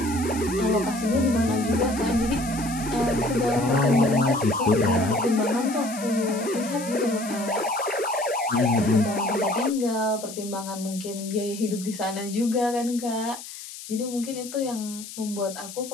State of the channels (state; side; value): noise; left; hiss, 13 dB below the sound